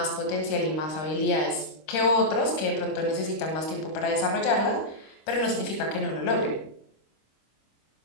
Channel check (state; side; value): late; right; 26 ms